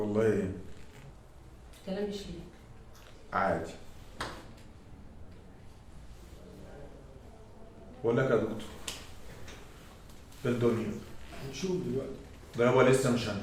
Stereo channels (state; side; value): identical; both; correlation 1.00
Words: ايه؟ كلام مش ليك. عادي. بقول لك يا دكتور، في الدنيا هنشوف دلوقتي. ده يابا لسه مش